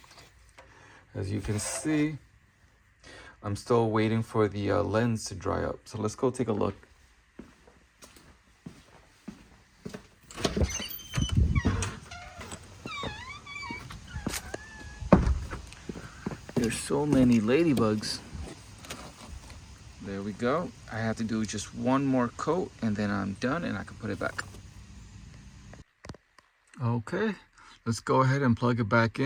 as you can see, I'm still waiting for the lens to dry up. So let's go take a look. There's so many ladybugs. There we go. I have to do just one more coat and then I'm done and I can put it back. Okay, let's go ahead and plug it back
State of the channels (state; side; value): identical; both; correlation 1.00